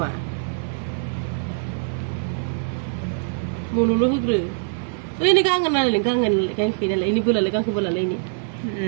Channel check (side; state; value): left; silent; 63 dB below the other